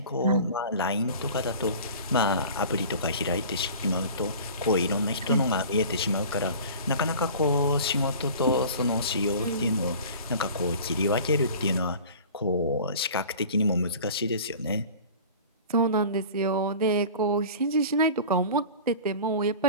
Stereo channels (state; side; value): inverted; both; correlation -0.41